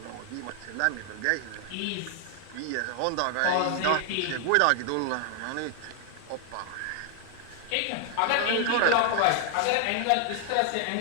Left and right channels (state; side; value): different; both; correlation 0.00